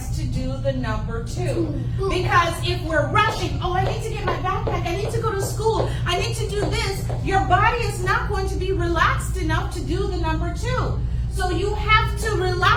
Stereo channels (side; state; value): both; identical; correlation 1.00